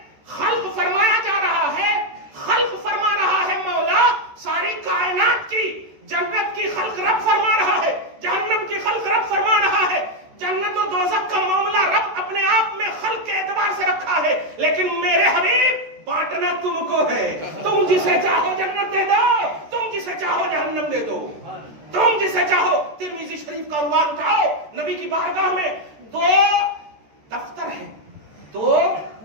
خلق فرمایا خلق رب فرما رہا ہے، جہنم کی خلق رب فرما رہا ہے، جنت و دوزخ کا معاملہ رب اپنے آپ میں خلق کے اعتبار سے رکھا ہے، لیکن میرے حبیب بانٹنا تم کو ہے. تم جسے چاہو جنت دے دو، تم جسے چاہو جہنم دے دو، تم جسے چاہو. ترمذی شریف کا عنوان اٹھاؤ، نبی کی بارگاہ میں 2 دفتر ہیں، 2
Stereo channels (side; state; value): left; late; 13 ms